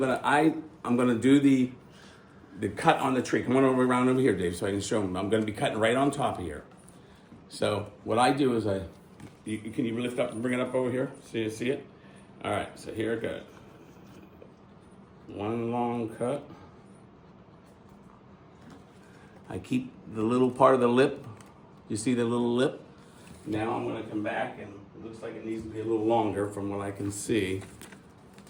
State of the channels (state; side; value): identical; both; correlation 1.00